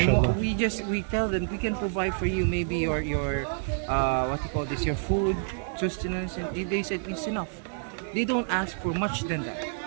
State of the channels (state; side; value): silent; left; 59 dB below the other